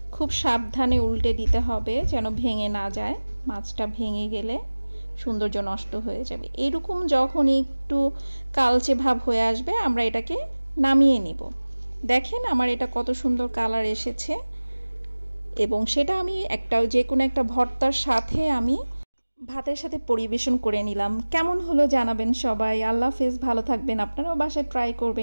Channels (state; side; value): inverted; both; correlation -1.00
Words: খুব সাবধানে উল্টে দিতে হবে যেন ভেঙে না যায়, মাছটা ভেঙে গেলে সৌন্দর্য নষ্ট হয়ে যাবে। এরকম যখন একটু কালচে ভাব হয়ে আসবে আমরা এটাকে নামিয়ে নিব। দেখেন আমার এটা কত সুন্দর কালার এসেছে এবং সেটা আমি যে কোনো একটা ভর্তার সাথে আমি ভাতের সাথে পরিবেশন করে নিলাম। কেমন হলো জানাবেন সবাই। আল্লাহ হাফেজ, ভালো থাকবেন। আপনারাও বাসায় ট্রাই